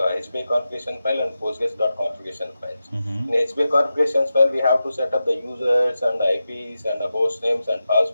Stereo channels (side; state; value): both; inverted; correlation -0.91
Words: HBA configuration file and Postgres.configuration files. Mm-hmm. In HBA configuration file, we have to set up the users and the IPs and the host names and